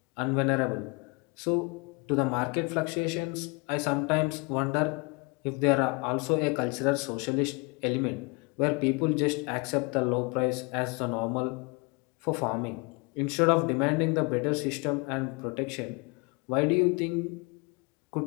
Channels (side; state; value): right; quieter; 30.0 dB